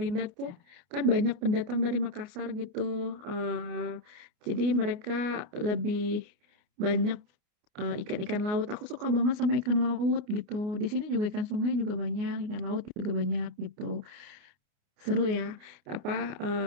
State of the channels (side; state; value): left; late; 29 ms